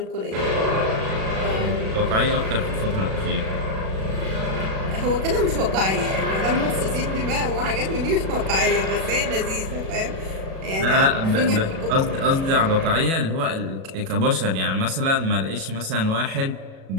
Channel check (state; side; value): late; left; 37 ms